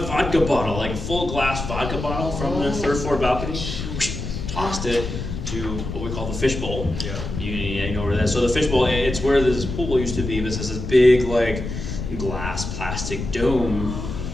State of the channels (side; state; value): left; noise; rumble, 6 dB below the sound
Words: bottle, like a full glass vodka bottle from the 3rd floor balcony. Tossed it to what we call the fishbowl. Yeah. You know where that is. So the fishbowl, it's where this pool used to be, but it has this big like glass plastic dome